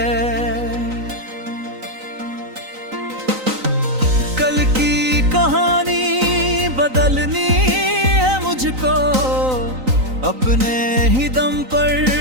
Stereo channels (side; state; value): left; late; 3.9 ms